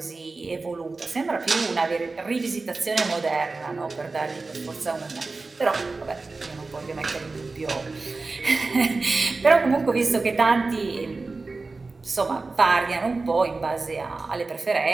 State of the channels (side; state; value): left; quieter; 3.7 dB